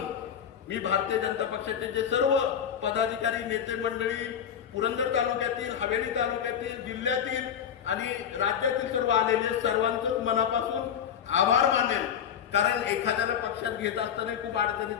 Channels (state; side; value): quieter; right; 8.5 dB